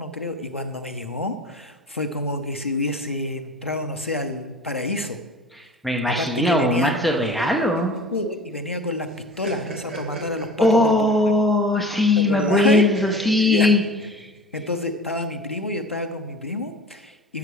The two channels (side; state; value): both; normal; correlation 0.40